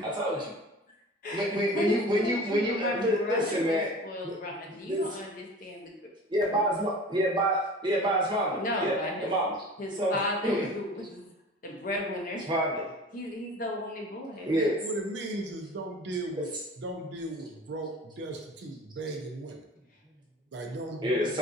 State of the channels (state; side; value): normal; both; correlation 0.40